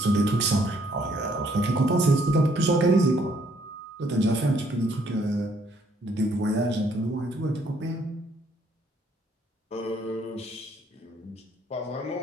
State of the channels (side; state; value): both; normal; correlation 0.67